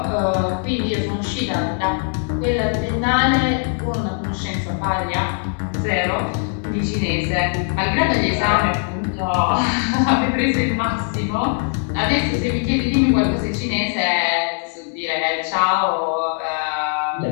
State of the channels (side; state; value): right; silent; 55 dB below the other